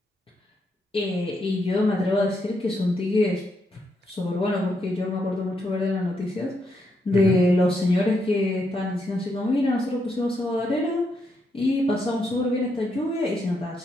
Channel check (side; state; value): both; normal; correlation 0.79